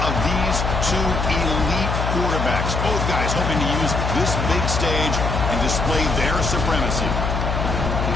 of these two elite quarterbacks. Both guys hoping to use this big stage and display their supremacy.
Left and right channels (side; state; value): left; noise; hum, 1 dB below the sound